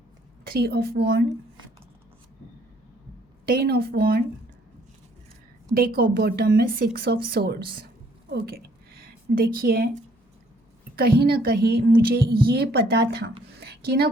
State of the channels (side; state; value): both; normal; correlation 0.64